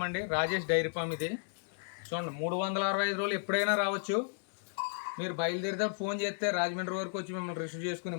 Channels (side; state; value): right; silent; digital silence